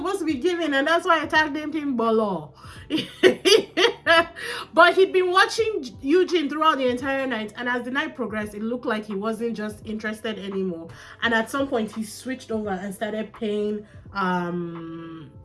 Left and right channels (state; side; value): identical; both; correlation 1.00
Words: to be giving, and that's why I tagged him Bolo. But he'd been watching Eugene throughout the entire night, and as the night progressed, it looked like he wasn't just interested anymore. And at some point he switched over and started paying